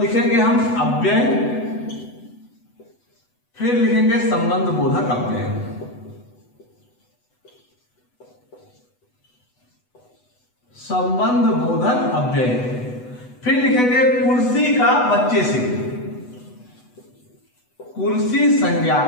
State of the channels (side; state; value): right; late; 8.1 ms